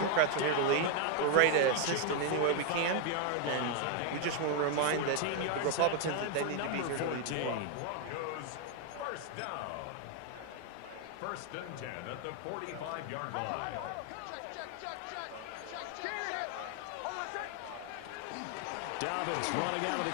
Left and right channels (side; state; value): both; different; correlation 0.01